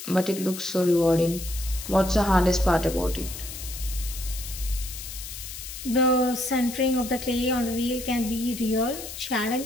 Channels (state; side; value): noise; left; hiss, 10 dB below the sound